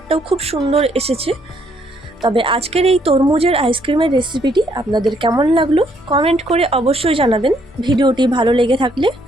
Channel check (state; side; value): normal; both; correlation 0.69